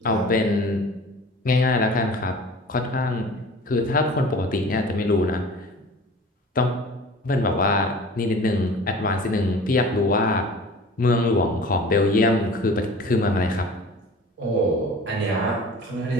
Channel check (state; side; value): normal; both; correlation 0.42